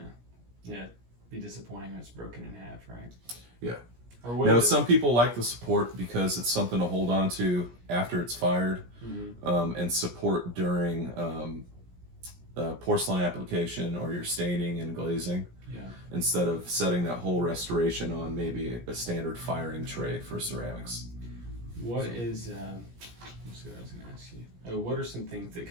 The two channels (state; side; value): late; left; 17 ms